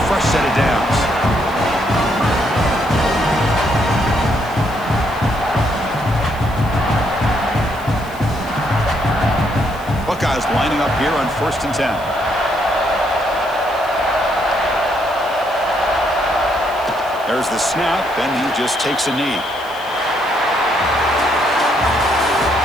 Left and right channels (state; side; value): noise; left; hiss, 22 dB below the sound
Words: fresh set of downs. Buckeyes lining up here on 1st and 10. There's the snap, and he just takes a knee.